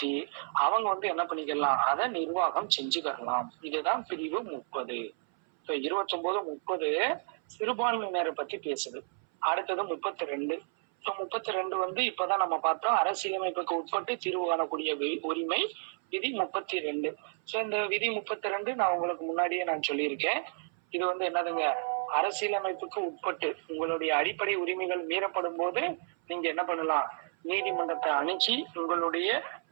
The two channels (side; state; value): left; silent; 57 dB below the other